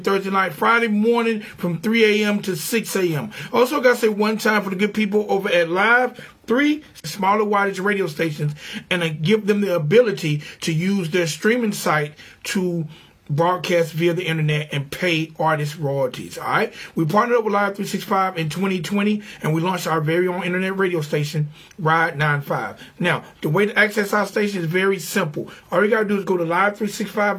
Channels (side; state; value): both; identical; correlation 1.00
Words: night, Friday morning from 3 a.m. to 6 a.m. Also got to say one time for the good people over at Live 3 smaller wattage radio stations, and give them the ability to use their streaming site to broadcast via the internet and pay artists royalties. All right, we partnered up with Live 365 in 2020, and we launched our very own internet radio station, Ride 95. Now, the way to access our station is very simple. All you gotta do is go to